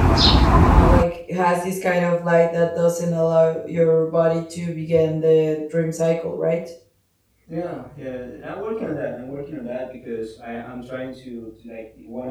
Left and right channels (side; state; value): both; identical; correlation 1.00